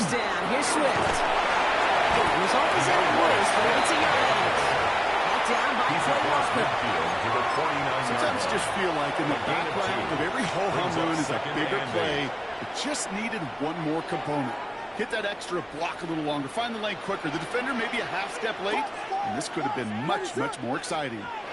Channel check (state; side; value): identical; both; correlation 1.00